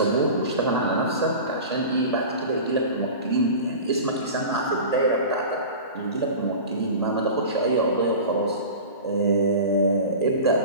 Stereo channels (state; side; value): inverted; both; correlation -0.34